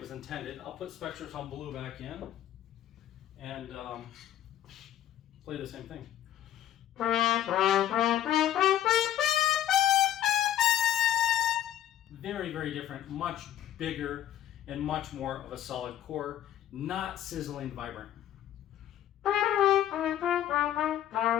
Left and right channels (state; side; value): quieter; right; 11.8 dB